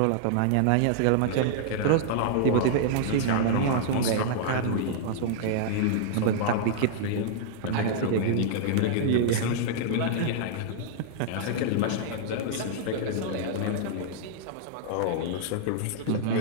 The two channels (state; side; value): different; both; correlation -0.01